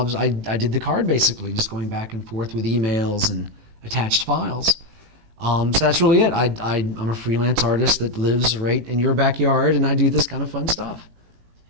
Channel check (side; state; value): left; late; 18 ms